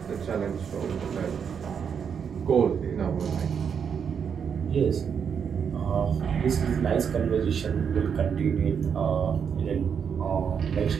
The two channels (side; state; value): left; quieter; 7.1 dB